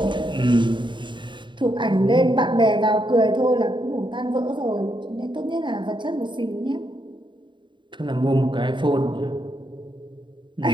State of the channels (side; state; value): left; late; 0.23 ms